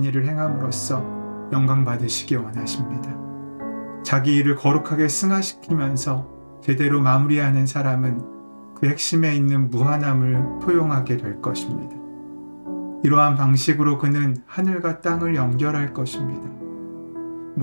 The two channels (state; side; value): inverted; both; correlation -1.00